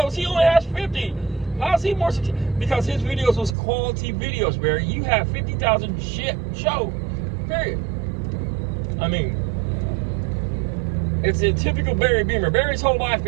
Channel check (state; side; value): drops out; left; at 3.6 s